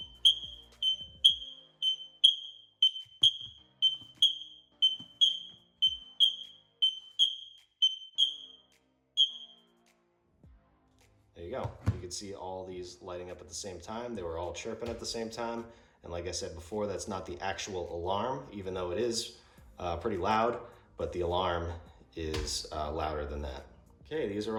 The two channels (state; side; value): identical; both; correlation 1.00